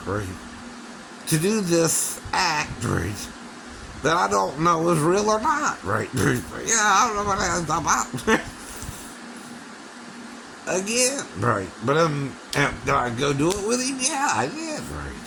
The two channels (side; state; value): both; identical; correlation 1.00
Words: right, to do this act, right, that I don't know is real or not, right? Yeah, I don't know what that's about. Again, right. But did I go do it with him? Yeah, I did, right.